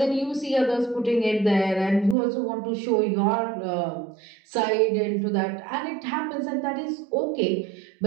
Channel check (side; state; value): left; drops out; at 2.1 s